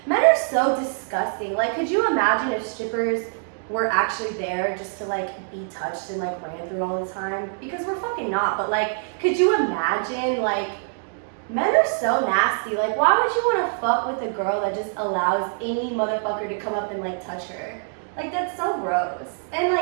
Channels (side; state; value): left; silent; digital silence